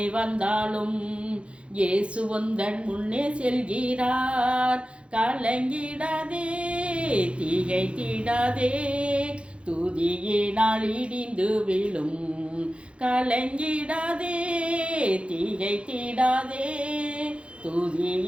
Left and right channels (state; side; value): late; left; 0.059 ms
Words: வந்தாலும் இயேசு உந்தன் முன்னே செல்கிறார். கலங்கிடாதே, திகைத்திடாதே, துதியினால் இடிந்து விழும். கலங்கிடாதே, திகைத்திடாதே,